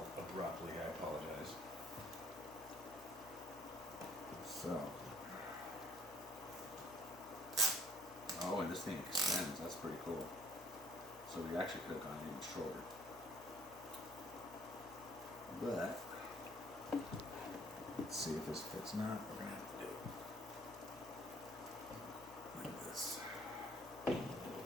abruptly, I apologize. So. Oh, and this thing extends, that's pretty cool. So we actually could have gone even shorter. But, let's see if this fits not. We're going to have to do it like this.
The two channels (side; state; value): both; normal; correlation 0.60